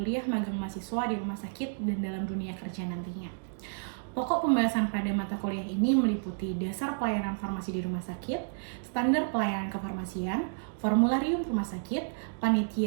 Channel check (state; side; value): silent; left; digital silence